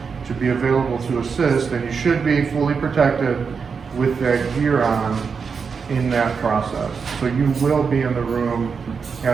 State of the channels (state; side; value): quieter; left; 5.7 dB